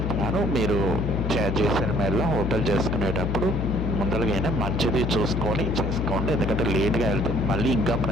మీరు జైసల్మేర్లో హోటల్ చేసుకునేటప్పుడు ముందరగానే మంచిది చూసుకొని చేసుకోండి, ఎందుకంటే లేట్గా వెళ్తే మళ్ళీ ఇంకా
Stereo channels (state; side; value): noise; left; hum, 1 dB below the sound